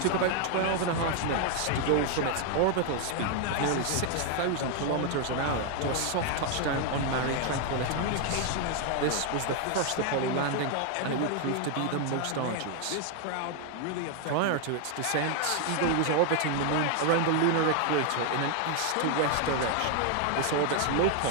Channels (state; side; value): different; both; correlation 0.01